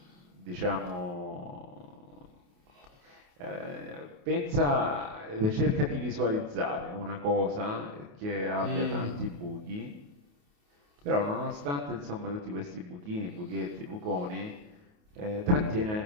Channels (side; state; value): left; late; 28 ms